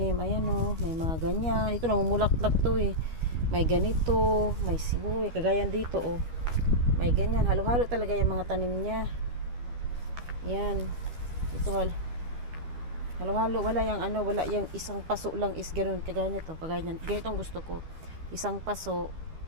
Ayan o, may mga ganyan. Ito namumulaklak to eh. May ganito, may sibuyas, kagaya dito o. May ganyan, halo-halo talaga yung mga tanim niya. Yan. Ito halo-halo, wala yung isang paso lang is ganoon, kagaya nito, kagaya niyan. Ganito ang gusto ko. Isang paso,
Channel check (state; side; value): late; left; 13 ms